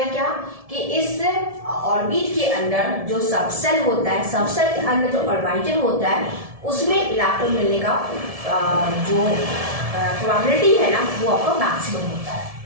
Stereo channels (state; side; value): late; left; 1.7 ms